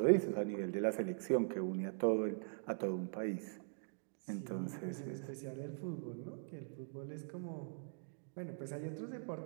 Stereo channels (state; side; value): silent; left; digital silence